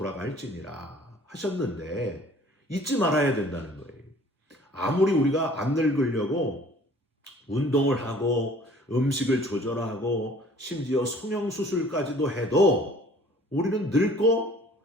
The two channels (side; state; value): both; normal; correlation 0.51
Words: 하셨는데 잊지 말아야 된다는 거예요. 아무리 우리가 안 늙으려고 운동을 하고 음식을 조절하고 심지어 성형수술까지도 해도 우리는 늙고